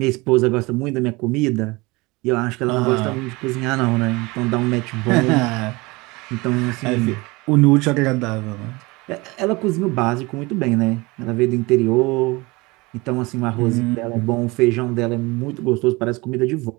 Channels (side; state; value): left; quieter; 23.9 dB